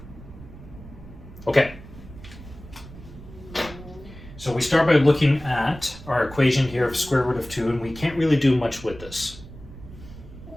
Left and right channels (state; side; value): noise; right; rumble, 16 dB below the sound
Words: Okay. So we start by looking at our equation here of square root of 2, and we can't really do much with this.